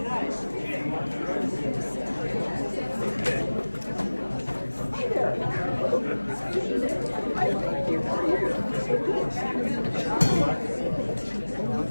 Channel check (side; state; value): both; inverted; correlation -1.00